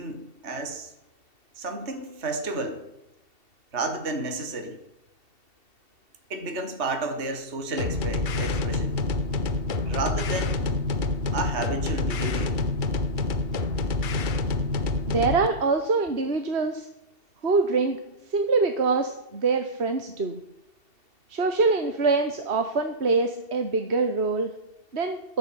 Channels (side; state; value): left; late; 2.7 ms